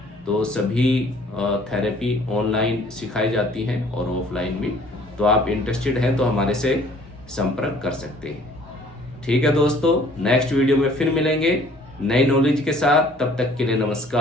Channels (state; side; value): normal; both; correlation 0.56